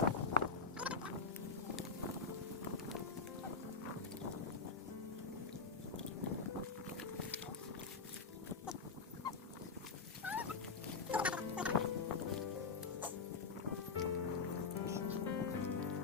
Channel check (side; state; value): right; quieter; 4.7 dB